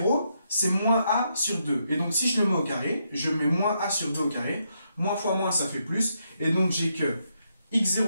c'est moins a sur 2. Et donc si je le mets au carré, je mets moins a sur 2 au carré, moins fois moins, ça fait plus, et donc j'ai que x0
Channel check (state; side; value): inverted; both; correlation -0.79